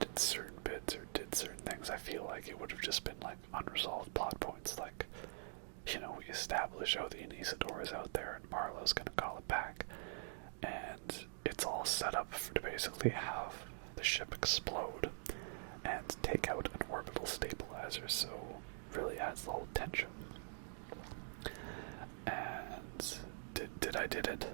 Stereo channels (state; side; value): silent; left; digital silence